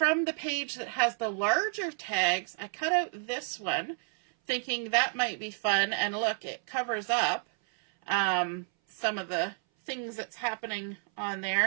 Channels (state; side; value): silent; left; 57 dB below the other